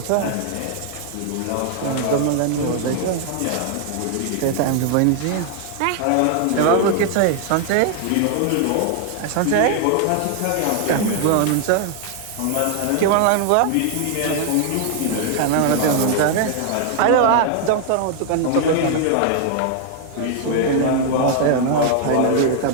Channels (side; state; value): both; different; correlation 0.00